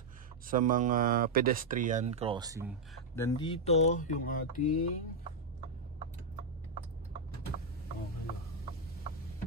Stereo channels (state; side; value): quieter; left; 3.0 dB